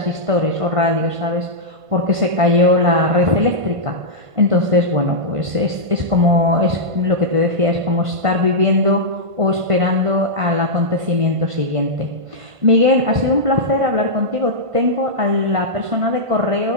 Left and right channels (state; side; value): late; left; 1.5 ms